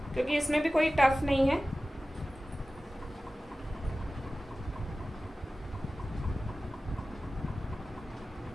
क्योंकि इसमें भी कोई टफ नहीं है।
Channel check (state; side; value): normal; both; correlation 0.96